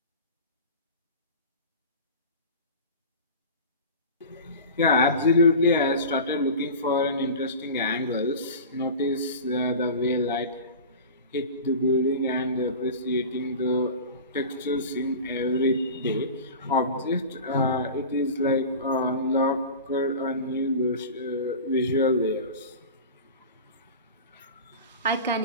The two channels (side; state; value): both; inverted; correlation -0.34